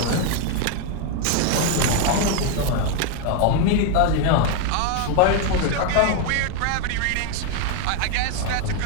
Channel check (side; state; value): both; different; correlation 0.01